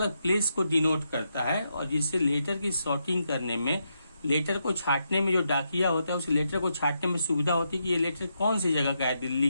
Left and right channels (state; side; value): inverted; both; correlation -0.82